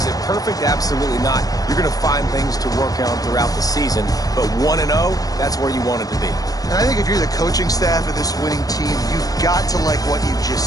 it perfect? Absolutely not. You're going to find things to work on throughout the season, but 1-0, that's where you want it to be. And I think if you're the coaching staff of this winning team, you've got to like what you've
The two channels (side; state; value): right; late; 0.18 ms